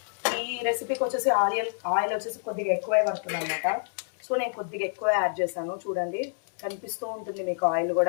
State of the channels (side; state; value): right; silent; 60 dB below the other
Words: ఈ రెసిపీకి వచ్చేసి ఆయిల్ వచ్చేసి కొద్దిగా ఎక్కువే పడుతుంది అనమాట. సో నేను కొద్దిగా ఎక్కువ యాడ్ చేశాను. చూడండి, కనిపిస్తూ ఉంటుంది మీకు ఆయిల్